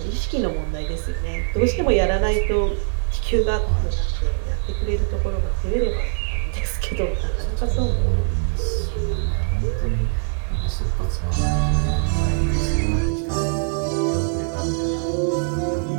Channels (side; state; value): left; silent; digital silence